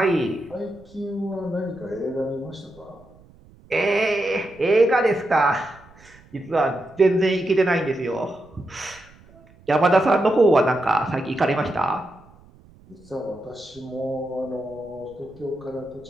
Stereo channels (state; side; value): noise; right; rumble, 26 dB below the sound